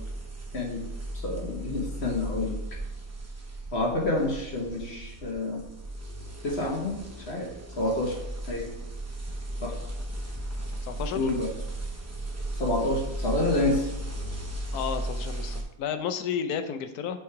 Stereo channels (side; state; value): both; normal; correlation 0.12